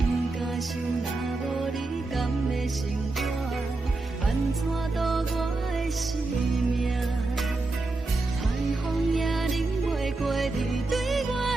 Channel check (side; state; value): left; quieter; 3.2 dB